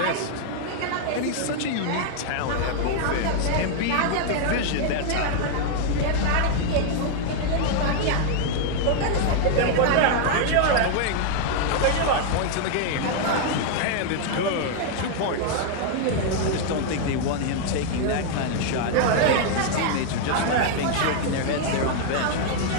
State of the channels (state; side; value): different; both; correlation 0.00